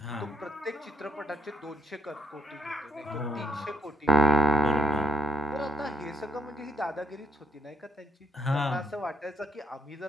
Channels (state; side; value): normal; both; correlation 0.69